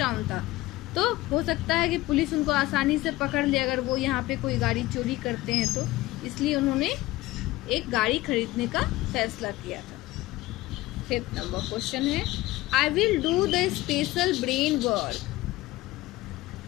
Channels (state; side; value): quieter; right; 18.3 dB